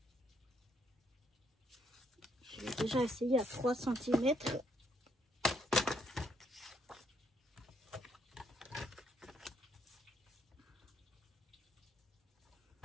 Je vais déjà essayer à 3 cm.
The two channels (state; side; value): normal; both; correlation 0.72